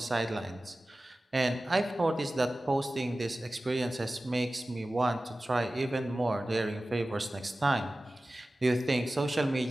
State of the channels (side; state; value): both; normal; correlation 0.96